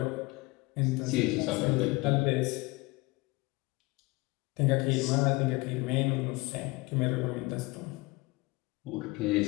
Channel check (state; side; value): quieter; right; 23.8 dB